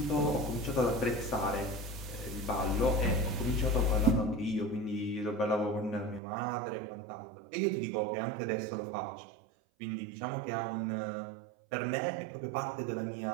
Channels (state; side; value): drops out; left; at 6.2 s